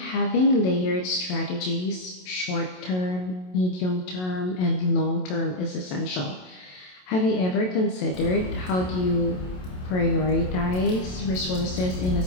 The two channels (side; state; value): right; late; 27 ms